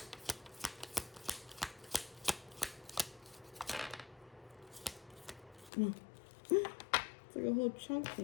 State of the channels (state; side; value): drops out; right; at 5.7 s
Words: It's like a whole chunk